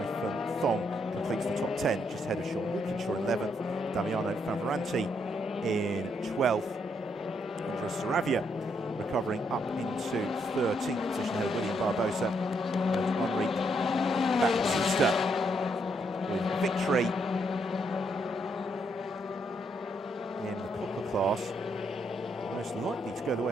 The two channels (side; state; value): both; normal; correlation 0.75